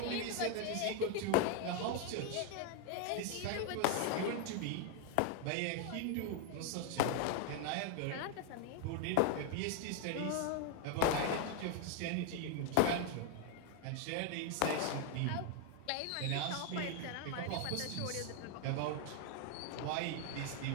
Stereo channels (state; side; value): different; both; correlation 0.01